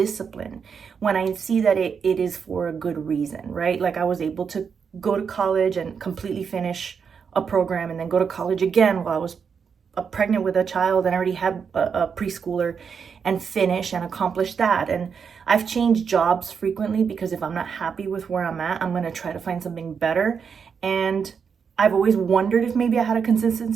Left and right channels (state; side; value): quieter; left; 6.4 dB